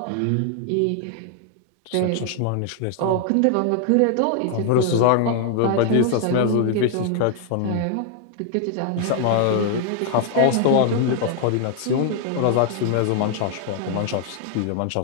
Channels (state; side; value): different; both; correlation 0.00